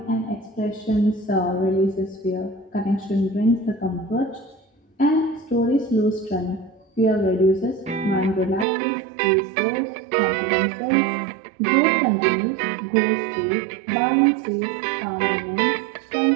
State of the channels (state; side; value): drops out; left; at 8.7 s